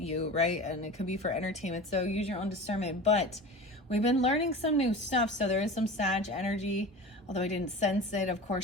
right? And it could be for entertainment. So use your own discernment. But we've been learning some new stuff. So there is some Sag energy, although I didn't sense it. Of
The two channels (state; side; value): normal; both; correlation 0.34